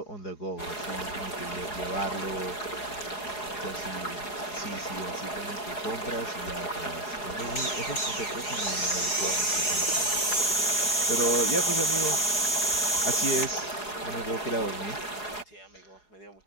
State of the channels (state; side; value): late; right; 4.8 ms